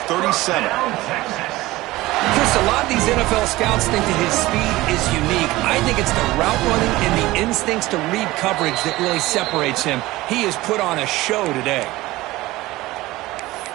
37. Chris, a lot of these NFL scouts think that his speed is unique. I think it's the route running and the instincts to read coverage that really separates him. He has put on a show today.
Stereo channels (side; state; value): left; quieter; 18.6 dB